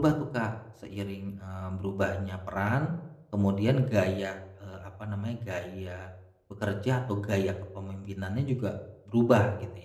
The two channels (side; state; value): both; identical; correlation 1.00